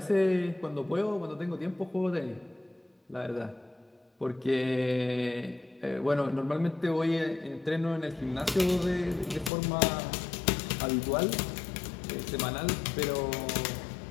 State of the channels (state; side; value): drops out; right; at 9.5 s